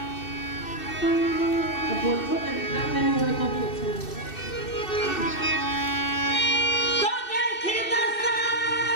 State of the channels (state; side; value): late; right; 2.6 ms